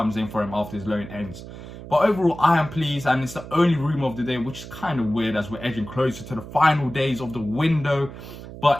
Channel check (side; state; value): right; noise; hum, 13 dB below the sound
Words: in for him after his loan ends. But overall, I am pleased, and it's the only rumour of the day, which is kind of weird as we're edging closer to the final days of the window.